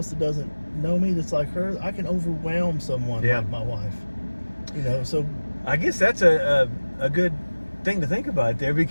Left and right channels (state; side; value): inverted; both; correlation -1.00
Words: that doesn't know me that's like her, I can overwhelm someone like my wife. You know, so I guess that's a good thing to think about there,